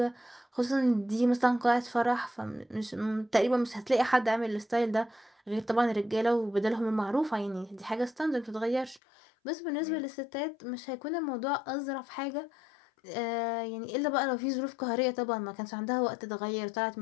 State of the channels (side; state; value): right; drops out; at 9.0 s